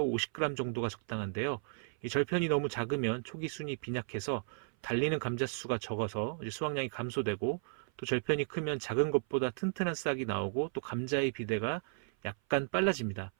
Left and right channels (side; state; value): left; silent; 55 dB below the other